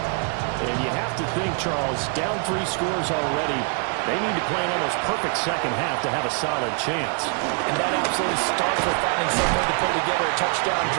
And you have to think, Charles, down 3 scores already. They need to play an almost perfect second half to have a solid chance. And that absolutely starts with finding some way to put together a touchdown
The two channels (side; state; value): left; quieter; 37.9 dB